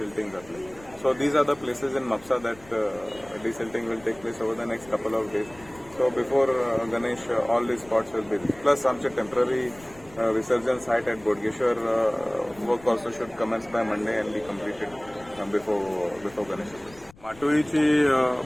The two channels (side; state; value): left; noise; rumble, 23 dB below the sound